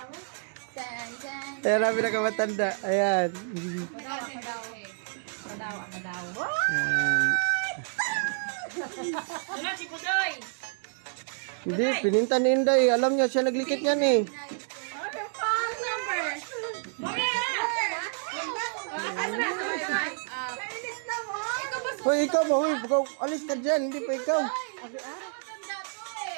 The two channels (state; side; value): silent; left; digital silence